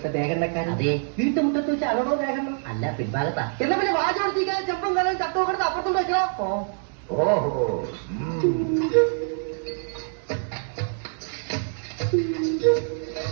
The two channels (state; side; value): silent; left; digital silence